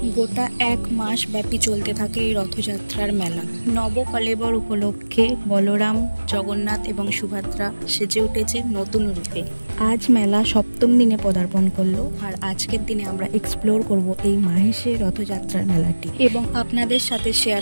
গোটা 1 মাস ব্যাপী চলতে থাকে এই রথযাত্রার মেলা। নবকলেবর উপলক্ষে বলরাম, জগন্নাথ এবং সুভদ্রা সেজে উঠেছে নতুন রূপে। আজ মেলা 7ম দিনে পদার্পণ করলো, আর আজকের দিনে আমরা এক্সপ্লোর করব এই মাহেশের রথযাত্রার মেলাটি এবং আপনাদের সাথে শেয়ার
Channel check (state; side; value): inverted; both; correlation -1.00